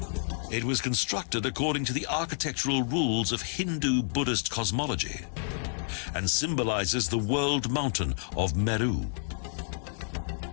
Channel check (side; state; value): right; silent; digital silence